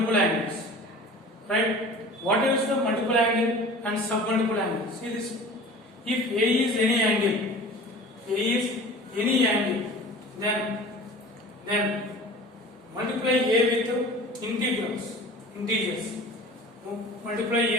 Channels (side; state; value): both; normal; correlation 0.41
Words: angles. Right? What is the multiple angle and submultiple angle? See this. If A is any angle, then multiply A with integers. Multiply